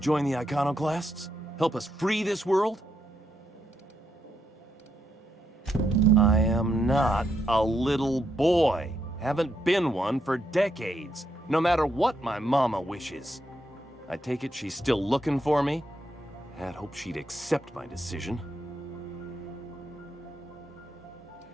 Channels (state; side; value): normal; both; correlation 0.79